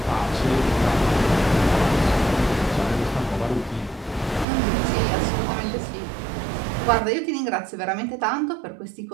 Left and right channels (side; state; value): left; drops out; at 4.5 s